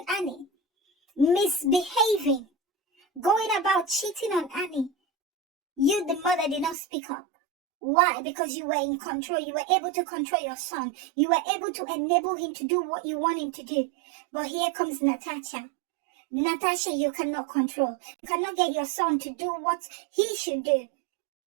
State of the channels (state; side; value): drops out; left; at 6.8 s